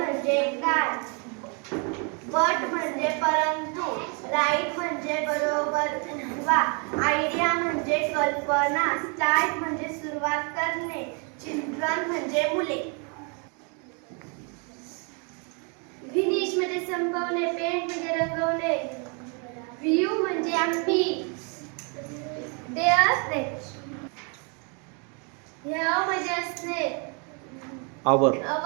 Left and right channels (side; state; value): left; quieter; 35.9 dB